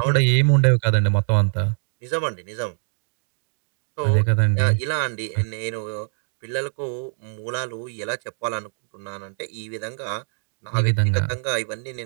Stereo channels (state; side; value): silent; left; 60 dB below the other